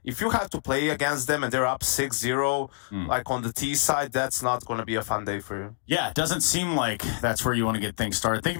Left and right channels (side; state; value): right; silent; digital silence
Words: if you have to play against them and they're up 6-0, like on the T side, that's not going to be a fun day for you. Yeah, it doesn't seem like that's where you want to get things started. Thank you